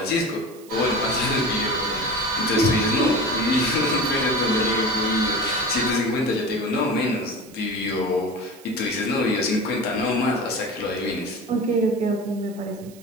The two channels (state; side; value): noise; right; hiss, 23 dB below the sound